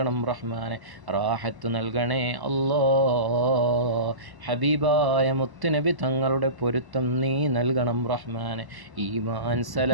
റഹ്മാനെ, റാഹത്ത് നൽകണേ അല്ലാ. ഹബീബായ മുത്തുനബി തങ്ങളുടെ പൊരുത്തം നീ നൽകണം റഹ്മാനെ. ഈമാൻ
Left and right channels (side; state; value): left; late; 1.1 ms